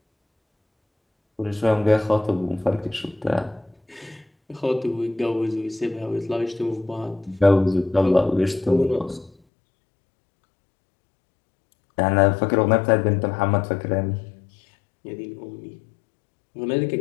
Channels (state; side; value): drops out; right; at 9.3 s